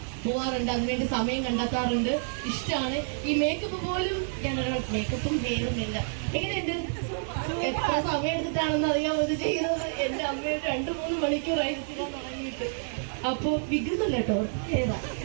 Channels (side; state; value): left; silent; digital silence